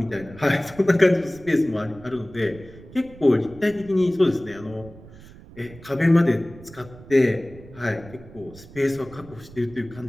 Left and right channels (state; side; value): noise; right; rumble, 19 dB below the sound